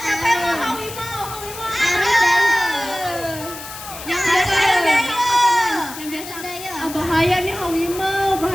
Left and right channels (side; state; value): left; noise; hiss, 12 dB below the sound